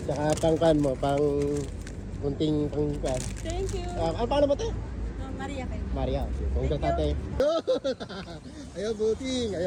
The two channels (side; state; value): both; identical; correlation 1.00